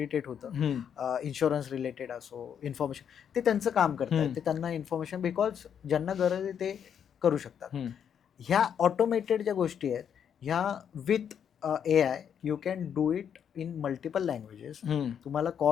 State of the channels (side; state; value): right; quieter; 8.3 dB